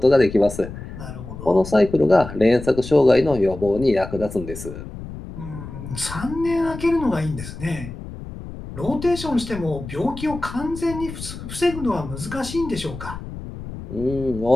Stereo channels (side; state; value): left; noise; rumble, 11 dB below the sound